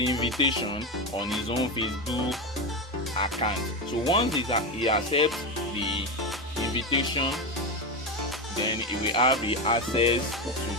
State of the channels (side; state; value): both; normal; correlation 0.15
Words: invitation on his own Facebook account. So once he accepts the invitation, then he will have the access to